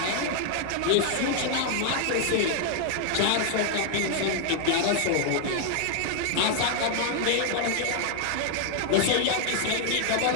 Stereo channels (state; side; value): different; both; correlation 0.00